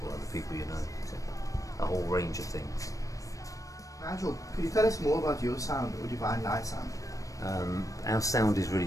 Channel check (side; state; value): right; late; 0.16 ms